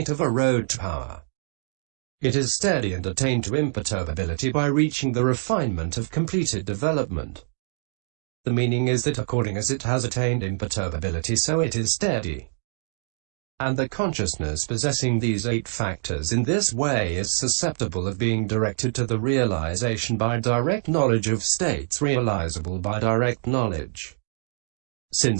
of a road to power. It is steady and attained to imperturbability by reaching the refinement of completed development. The meaning is that according as it has attained imperturbability, so it is steady. And the consciousness possessing these 8 factors in this way is susceptible of being directed to the realization by direct knowledge of states realizable by direct knowledge,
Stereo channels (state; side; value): silent; left; digital silence